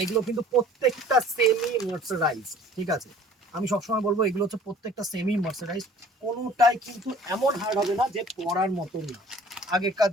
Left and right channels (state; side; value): normal; both; correlation 0.50